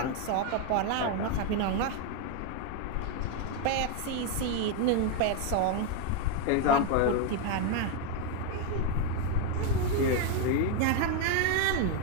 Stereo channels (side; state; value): both; different; correlation 0.01